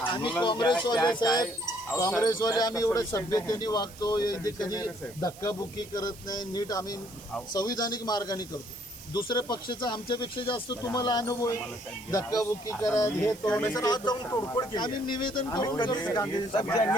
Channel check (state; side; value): noise; right; hiss, 19 dB below the sound